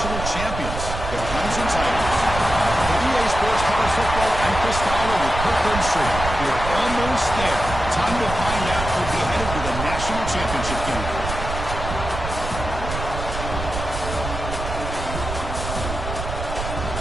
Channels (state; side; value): noise; right; rumble, 6 dB below the sound